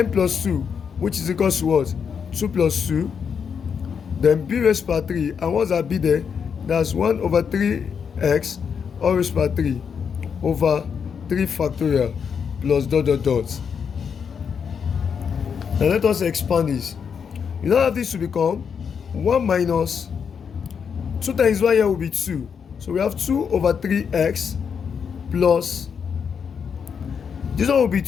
plus 2, which is equal to what? 2 plus 2. Then B raised by 3. And what's that B there? That's 1 over 3x all raised by 3 over 3 factorial plus dot dot dot. Now let us expand this. You now have this to become 1 minus 2 times 1 here will be 2. So we have 2 over 3x plus, this one will be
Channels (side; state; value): right; quieter; 6.8 dB